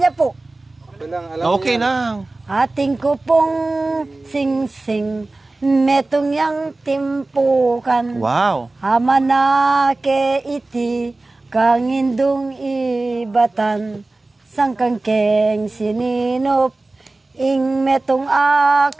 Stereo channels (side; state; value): left; quieter; 3.1 dB